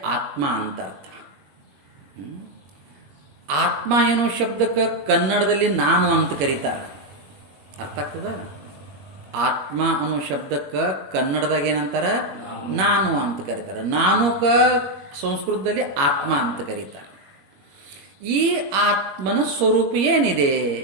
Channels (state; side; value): late; left; 21 ms